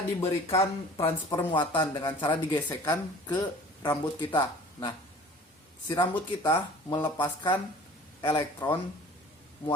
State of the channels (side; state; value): both; normal; correlation 0.46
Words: diberikan transfer muatan dengan cara digesekkan ke rambut kita. Nah, si rambut kita melepaskan